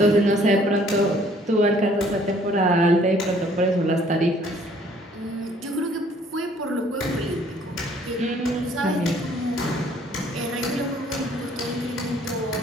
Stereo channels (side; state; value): both; normal; correlation 0.59